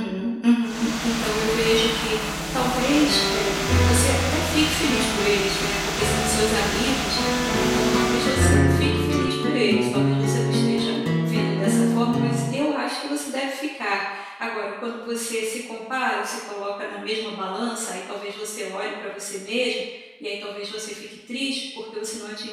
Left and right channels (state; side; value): identical; both; correlation 1.00